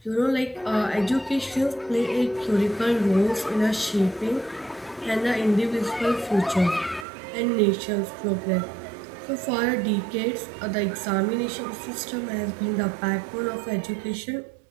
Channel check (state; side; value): drops out; left; at 7.1 s